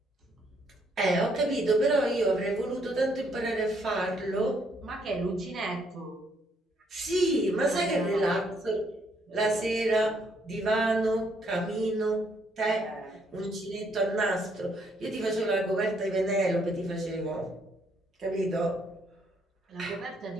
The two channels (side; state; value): both; normal; correlation 0.70